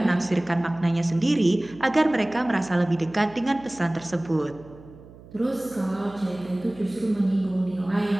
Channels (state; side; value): noise; right; hum, 20 dB below the sound